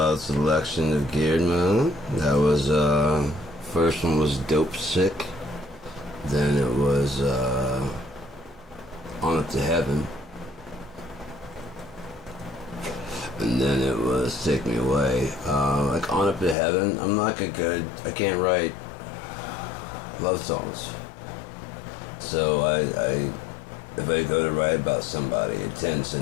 selection of Geared Man. That was, first one was Dope Sick. Then it was, On Up to Heaven. And then it was Take Me Away. Like On Up to Heaven, I'm not I can't write love songs. So if I go to write about somebody, it tends to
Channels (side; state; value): right; drops out; at 16.6 s